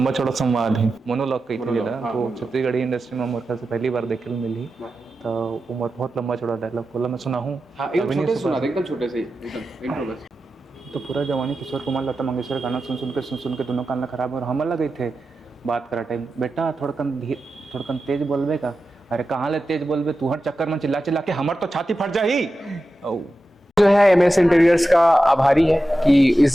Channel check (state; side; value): normal; both; correlation 0.92